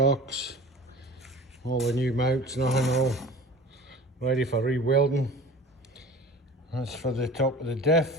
all the new mounts, nothing, all ready for re-welding. That's for the top of the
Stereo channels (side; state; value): both; normal; correlation 0.40